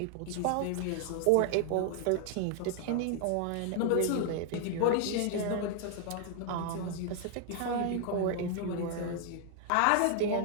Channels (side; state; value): both; different; correlation 0.00